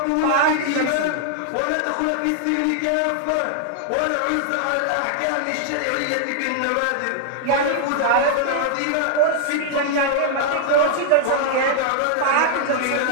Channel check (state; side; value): different; both; correlation -0.01